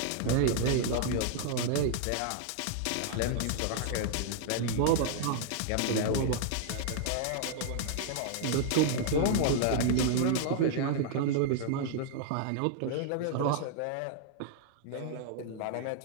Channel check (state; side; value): different; both; correlation -0.01